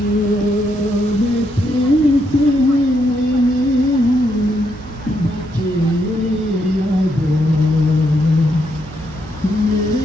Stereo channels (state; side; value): noise; right; hum, 19 dB below the sound